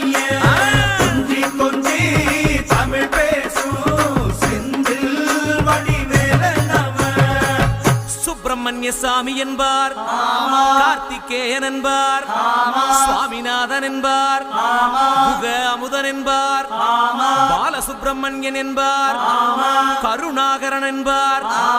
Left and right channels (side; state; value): both; identical; correlation 1.00